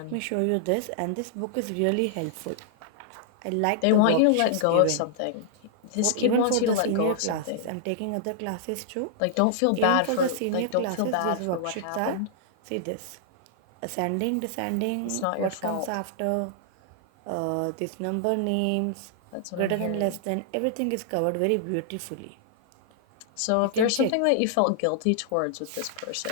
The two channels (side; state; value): both; different; correlation -0.01